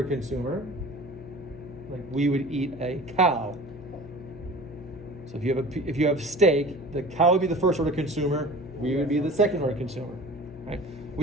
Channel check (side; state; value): left; noise; hum, 17 dB below the sound